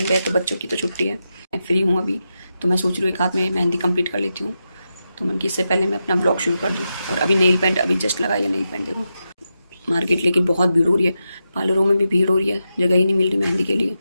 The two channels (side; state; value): both; inverted; correlation -0.88